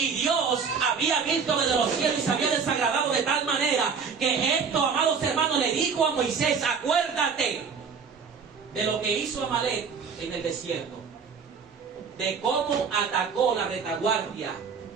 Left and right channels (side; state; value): left; quieter; 5.9 dB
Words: Dios había visto desde los cielos y se había desagradado de tal manera que esto, amados hermanos, le dijo a Moisés, acuérdate de lo que hizo Amalek en el desierto, de cómo atacó la retaguardia.